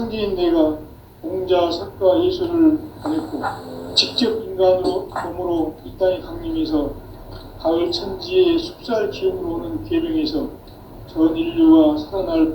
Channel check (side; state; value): both; identical; correlation 1.00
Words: 내가 공자, 석가, 예술을 보냈고 직접 인간으로 몸으로 이 땅에 강림해서 가을 천지의 숲살 기운으로 오는 계명에서 전 인류가 살아날